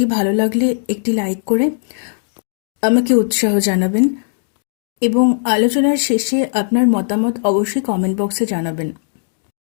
ভালো লাগলে একটি লাইক করে আমাকে উৎসাহ জানাবেন এবং আলোচনার শেষে আপনার মতামত অবশ্যই কমেন্ট বক্সে জানাবেন।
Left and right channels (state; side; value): silent; right; digital silence